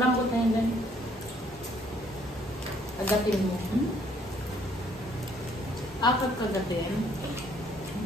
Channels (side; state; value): both; normal; correlation 0.64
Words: butang yan. Agatin mo. Akad kagatin.